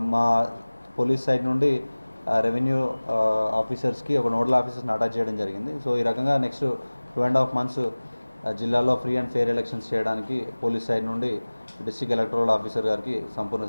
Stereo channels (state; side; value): inverted; both; correlation -1.00